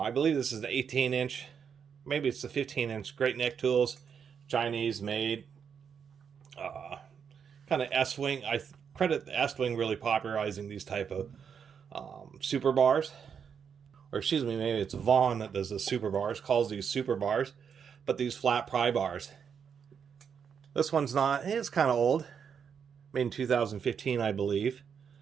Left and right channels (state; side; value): quieter; left; 7.1 dB